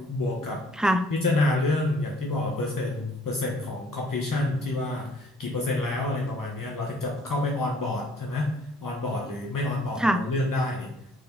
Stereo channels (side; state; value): both; normal; correlation 0.59